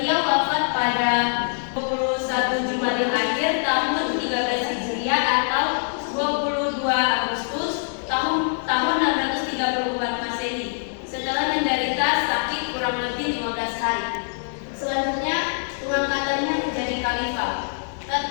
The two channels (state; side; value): silent; right; digital silence